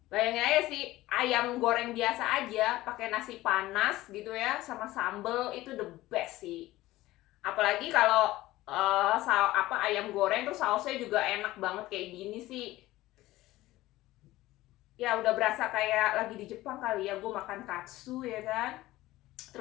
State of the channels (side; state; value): right; quieter; 17.1 dB